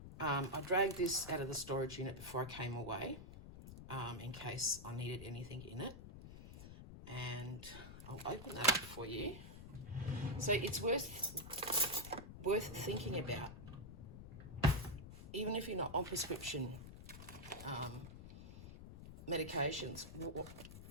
I dragged this out of the storage unit before I came away in case I needed anything in it. And I'll open that up for you. So it's worth thinking about, even if you're not on prescription medications.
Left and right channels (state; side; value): noise; left; rumble, 13 dB below the sound